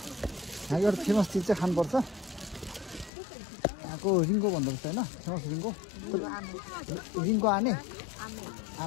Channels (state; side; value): drops out; right; at 3.1 s